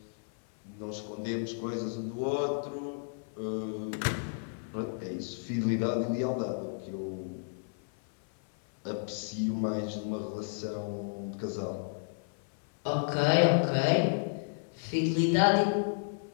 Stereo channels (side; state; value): right; silent; 56 dB below the other